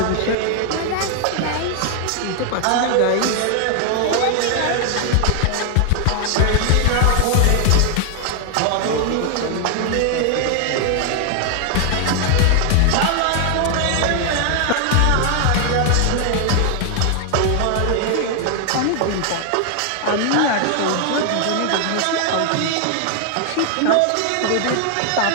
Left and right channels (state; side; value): different; both; correlation 0.00